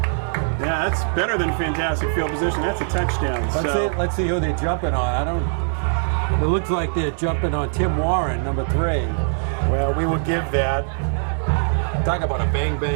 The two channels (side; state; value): left; silent; digital silence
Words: Yeah, that's better than fantastic field position. That's a touchdown. Let's see who they're jumping on. It looks like they're jumping on Tim Warren, number 3. Well, we will give that. Talk about a